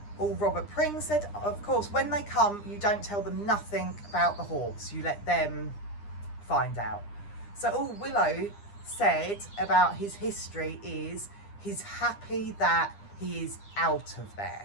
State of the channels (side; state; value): right; late; 9.8 ms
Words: all Robert Pring said, of course when they come you don't tell them nothing about the horse, you let them find out. So all Willow said about his history is he's happy that he is out of